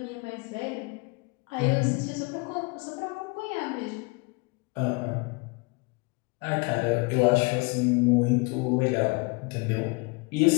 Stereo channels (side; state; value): right; quieter; 28.9 dB